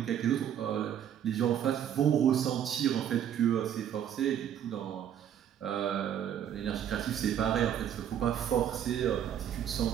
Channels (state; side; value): quieter; left; 9.7 dB